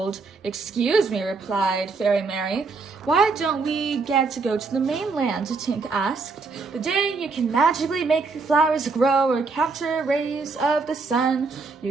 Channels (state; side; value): quieter; left; 4.2 dB